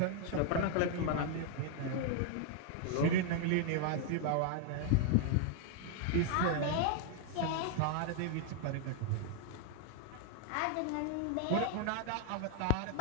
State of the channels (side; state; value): both; different; correlation 0.00